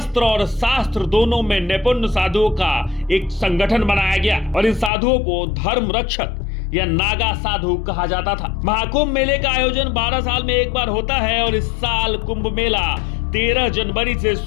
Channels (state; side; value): drops out; right; at 4.9 s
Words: और शास्त्र दोनों में निपुण साधुओं का एक संगठन बनाया गया और इन साधुओं को धर्म रक्षक या नागा साधु कहा जाता था। महाकुंभ मेले का आयोजन 12 साल में एक बार होता है और इस साल कुंभ मेला 13 जनवरी से